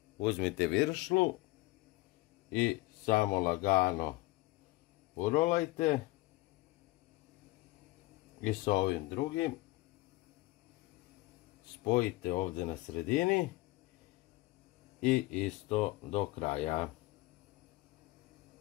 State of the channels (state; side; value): quieter; right; 20.6 dB